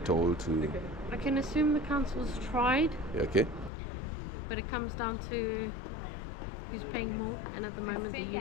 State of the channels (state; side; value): drops out; right; at 3.7 s